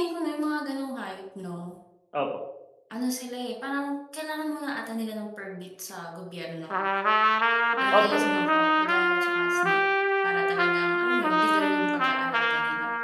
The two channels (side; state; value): both; identical; correlation 1.00